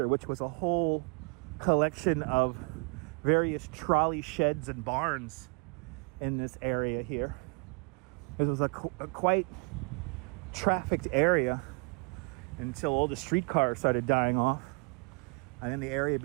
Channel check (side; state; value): left; quieter; 36.4 dB